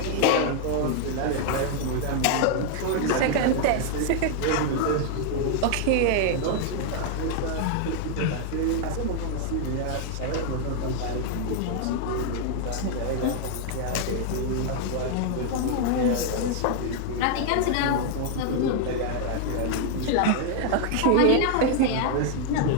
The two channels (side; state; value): both; different; correlation 0.00